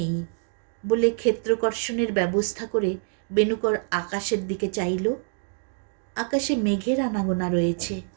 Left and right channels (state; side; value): silent; left; digital silence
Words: বলে ক্ষেত্রকর্ষণের ব্যবস্থা করে বেনুকর আকাশের দিকে চাইল। আকাশে মেঘের আনাগোনা রয়েছে।